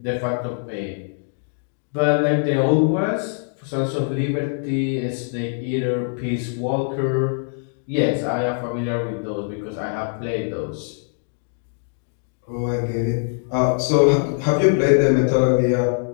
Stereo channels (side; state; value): right; silent; digital silence